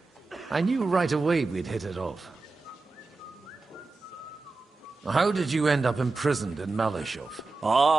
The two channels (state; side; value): quieter; left; 3.7 dB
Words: I knew right away we'd hit it off. How did you end up imprisoned in Malashov?